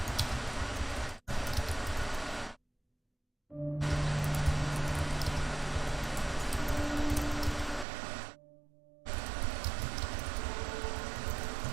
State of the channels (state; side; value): drops out; left; at 7.9 s